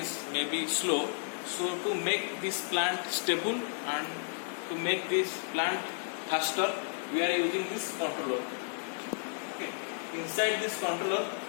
maybe slow. So to make this plant stable and to make this plant faster, we are using this controller. Okay. Inside this controller,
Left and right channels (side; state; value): right; silent; digital silence